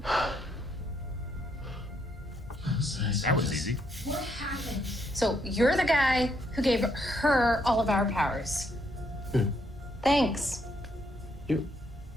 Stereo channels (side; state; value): both; normal; correlation 0.74